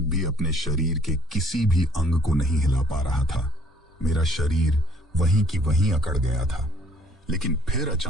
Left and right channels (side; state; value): both; normal; correlation 0.61